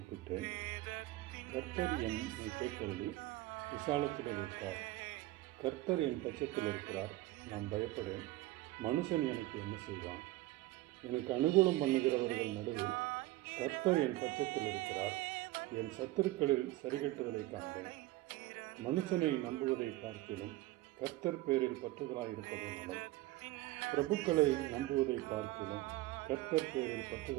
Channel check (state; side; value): quieter; left; 17.8 dB